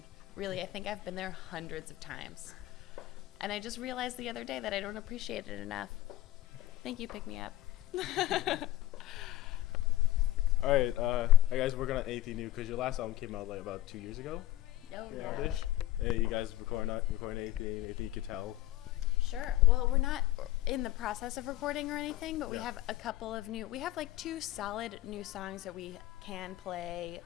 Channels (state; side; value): quieter; right; 15.7 dB